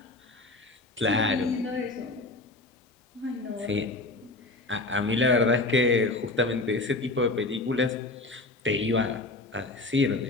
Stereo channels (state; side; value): quieter; right; 3.1 dB